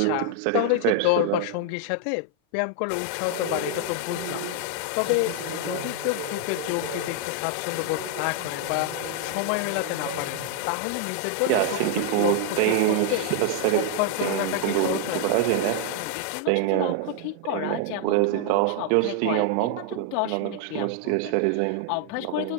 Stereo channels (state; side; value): different; both; correlation 0.00